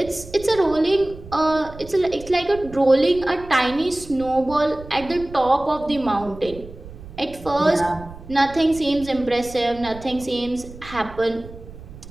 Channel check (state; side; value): noise; right; rumble, 16 dB below the sound